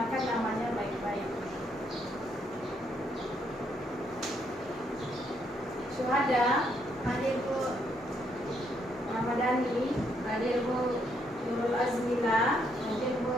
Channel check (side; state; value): both; normal; correlation 0.73